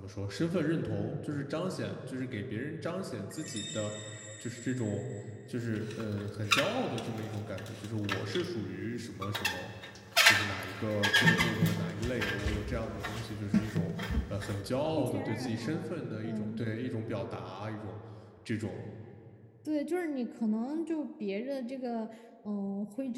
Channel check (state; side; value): identical; both; correlation 1.00